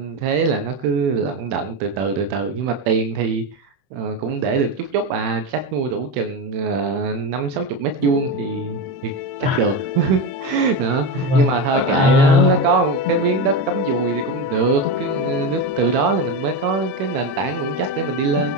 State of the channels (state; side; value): late; left; 21 ms